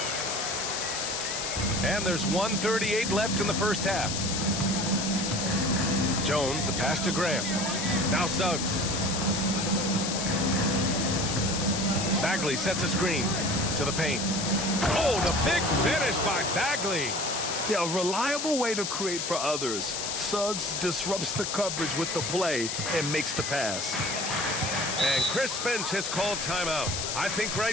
And there's 1:38 left in the first half. Jones, the pass to Graham. Now Suggs. Bagley sets a screen to the paint. Oh, the big finish by Bagley. Yeah, a reliable way to create for others. Suggs disrupts the coverage with the play and makes the pass. And Chris Finch has called timeout. I think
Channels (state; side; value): noise; left; hiss, 3 dB below the sound